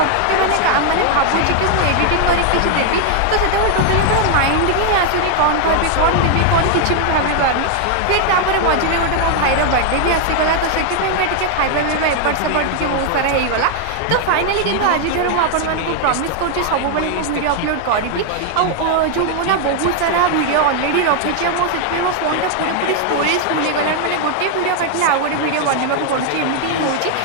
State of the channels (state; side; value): different; both; correlation 0.00